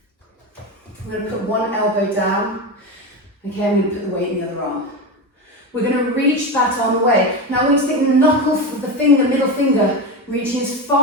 we're going to put one elbow down. Okay, I'm going to put the weight in the other arm. We're going to reach that arm away. Now I want you to think the knuckle of the finger, middle finger, reaching as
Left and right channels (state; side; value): normal; both; correlation 0.19